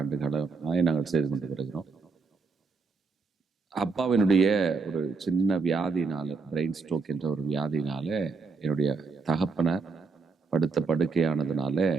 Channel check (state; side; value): quieter; left; 4.4 dB